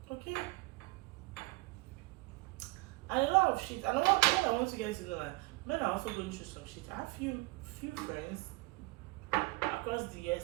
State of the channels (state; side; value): quieter; left; 23.2 dB